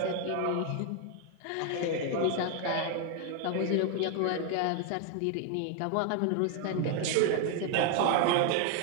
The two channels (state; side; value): different; both; correlation 0.01